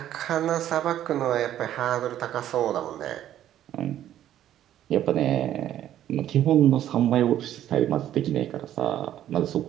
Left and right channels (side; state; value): left; quieter; 11.8 dB